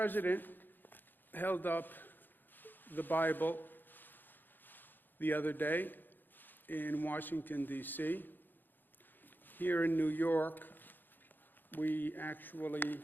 held up the Bible the other day in Washington, D.C. Here in New York, we actually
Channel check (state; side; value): late; right; 0.091 ms